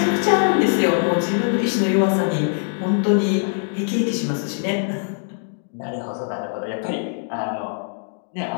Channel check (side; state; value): right; silent; 58 dB below the other